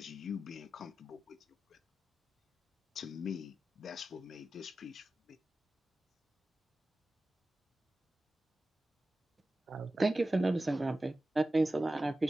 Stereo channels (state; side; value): normal; both; correlation 0.95